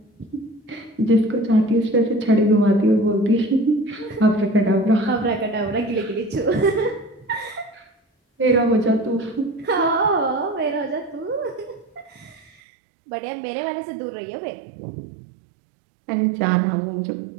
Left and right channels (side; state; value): left; drops out; at 12.5 s